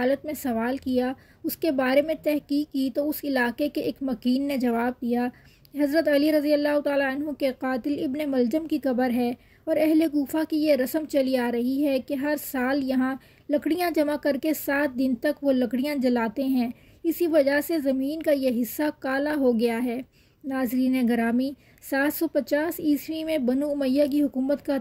میں سوال کیا، اس کے بارے میں تحقیق کی تو اس علاقے کے ایک مکین نے جواب دیا حضرت علی رضی اللہ تعالیٰ عنہ کے قاتل ابن ملجم کی قبر ہے، اور اہل کوفہ کی یہ رسم چلی آ رہی ہے کہ ہر سال یہاں لکڑیاں جمع کر کے 7 دن تک وہ لکڑیاں جلاتے ہیں، اسی وجہ سے زمین کا یہ حصہ کالا ہو گیا ہے۔ ناظرین گرامی، 750 عیسوی میں بنو امیہ کی حکومت کا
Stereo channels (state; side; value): identical; both; correlation 1.00